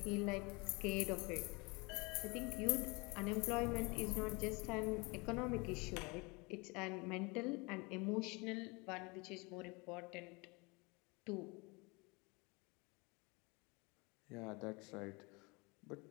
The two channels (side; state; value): right; quieter; 27.7 dB